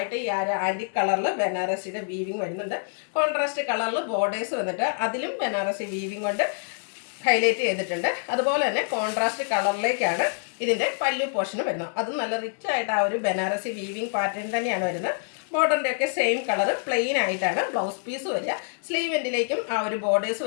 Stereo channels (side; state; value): right; silent; digital silence